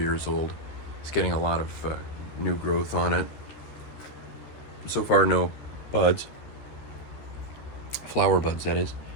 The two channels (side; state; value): right; late; 13 ms